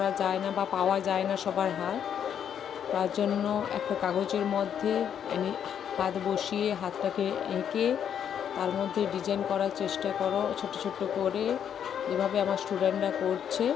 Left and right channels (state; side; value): quieter; right; 8.7 dB